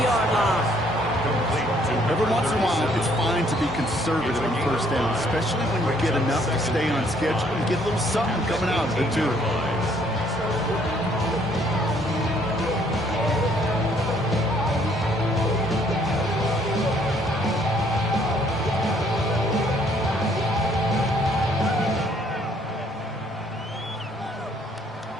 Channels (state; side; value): normal; both; correlation 0.64